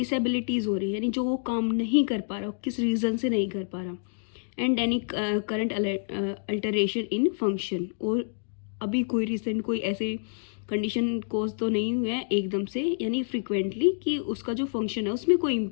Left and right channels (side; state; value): right; silent; digital silence